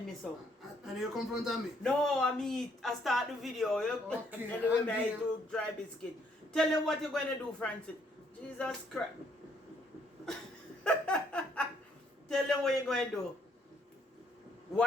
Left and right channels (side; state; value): both; normal; correlation 0.68